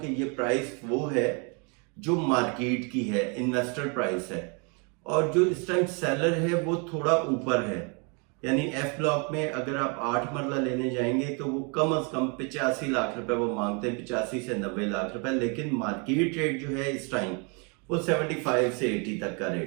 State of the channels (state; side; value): quieter; left; 34.4 dB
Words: ये प्राइस वो है जो मार्केट की है, इन्वेस्टर प्राइस है। और जो इस टाइम सेलर है वो थोड़ा ऊपर है, यानी एफ ब्लॉक में अगर आप 8 मरला लेने जाएंगे तो वो कम से कम 85 लाख रुपए वो मांगते हैं, 85 से 90 लाख रुपए। लेकिन मार्केट रेट जो है इस टाइम वो 75 से 80 तक का